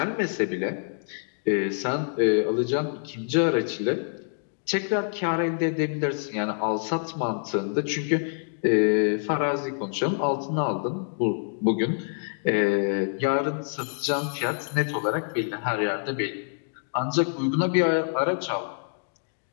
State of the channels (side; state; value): right; silent; digital silence